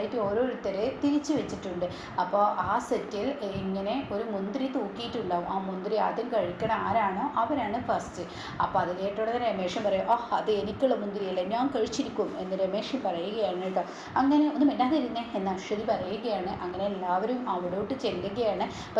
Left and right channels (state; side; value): identical; both; correlation 1.00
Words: ഓരോരുത്തരെ തിരിച്ചു വെച്ചിട്ടുണ്ട്. അപ്പോൾ ആ സെറ്റിൽ ഇങ്ങനെ ഒരു മുന്തിരി തൂക്കിയിട്ടുണ്ടാവും. ആ മുന്തിരി ആദ്യം കഴിക്കണ ആരാണോ അവരാണ് ഫസ്റ്റ്. അപ്പോൾ അത് കേട്ടോടെ രമേശൻ പറയും, അത് എനിക്കുള്ള മുന്തിരിയല്ല, ഞാൻ കഴിച്ചിരിക്കും എന്ന് രമേശൻ പറയുകയാണ് കേട്ടോ. അങ്ങനെ ഒന്നും മിണ്ടാതിരുന്നേ എന്ന് അശ്വതി പറയുകയാണ്. അങ്ങനെ എല്ലാവരും അവിടോട്ട് ചെല്ലുകയാണ്.